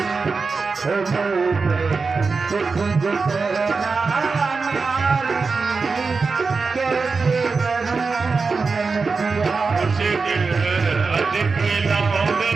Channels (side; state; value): left; quieter; 4.5 dB